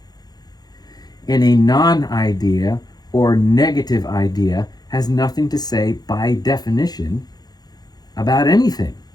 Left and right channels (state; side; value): late; right; 0.19 ms